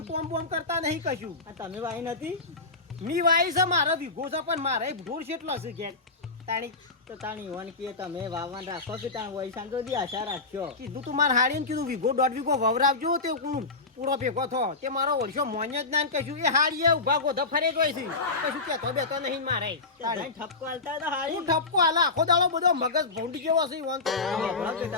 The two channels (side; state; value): right; quieter; 3.8 dB